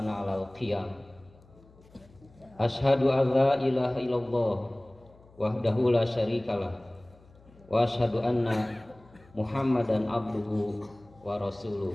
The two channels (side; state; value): left; noise; hum, 26 dB below the sound